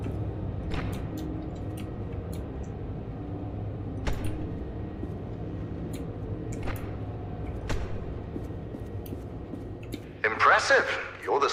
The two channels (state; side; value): identical; both; correlation 1.00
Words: Impressive. You're the